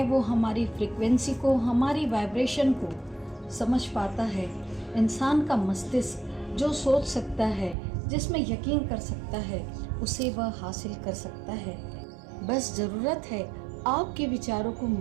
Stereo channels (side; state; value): left; drops out; at 7.8 s